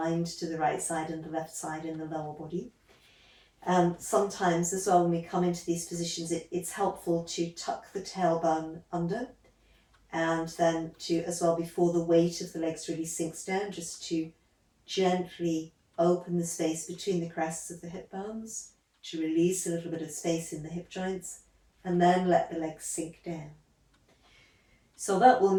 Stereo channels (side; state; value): both; identical; correlation 1.00